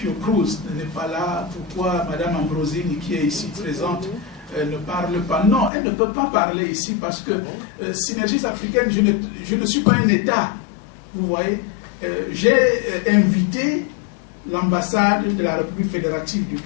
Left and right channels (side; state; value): right; drops out; at 5.7 s